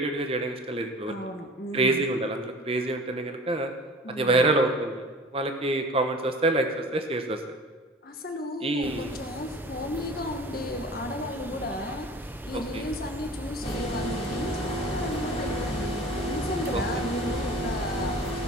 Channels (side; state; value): both; normal; correlation 0.42